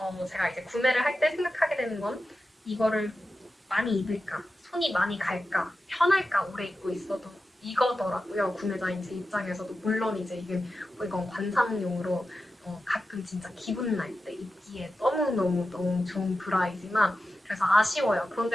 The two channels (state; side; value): normal; both; correlation 0.92